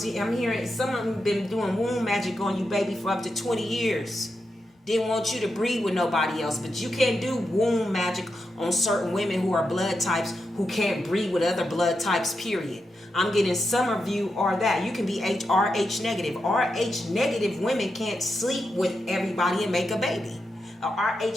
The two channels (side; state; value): both; normal; correlation 0.87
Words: hearing some of them been doing womb magic on you, baby, for up to 20 years. Didn't want you to breed with nobody else. But you can't do womb magic on certain women who are blood types who can't breed with other blood types, period. I'm getting some of you are that. You can be RH negative. RH negative women can't sleep with everybody and make a baby. A